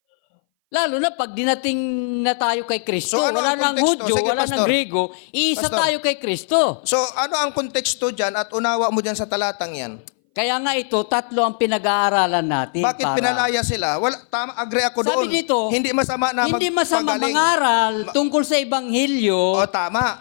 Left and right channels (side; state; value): right; silent; 61 dB below the other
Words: Lalo na pag dinating na tayo kay Kristo, So, ano wala ang nang konteksto? Hudyo, Sige, wala Pastor. nang Grego, iisa Pastor. tayo kay Kristo. So, ano ang konteksto dyan at unawa mo dyan sa talatang yan? Kaya nga ito, tatlo ang pinag-aaralan natin. Bakit pinalaya sila? Wala, tama, agree ako Sabi doon. dito, Hindi masama na hindi masama magpagaling. mangaral tungkol sa Ebanghelyo. O,